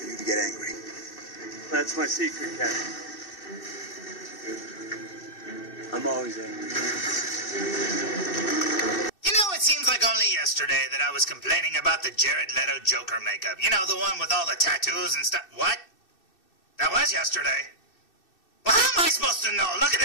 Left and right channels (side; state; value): right; late; 2.6 ms